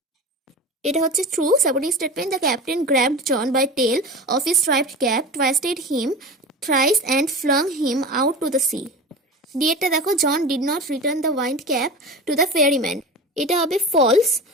এটা হচ্ছে true supporting statement the captain grabbed John by tail of his striped cap, twisted him thrice and flung him out to the sea. ডিএটা দেখো John did not return the wind cap to the ferryman. এটা হবে false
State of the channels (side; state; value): both; normal; correlation 0.30